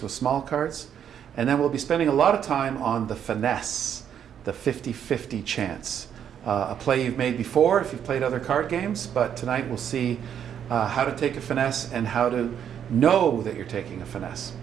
with small cards. And then we'll be spending a lot of time on the finesse, the 50-50 chance. A play you've made before if you've played other card games, but tonight we'll see how to take a finesse and how to know that you're taking a finesse.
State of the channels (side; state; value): left; quieter; 8.9 dB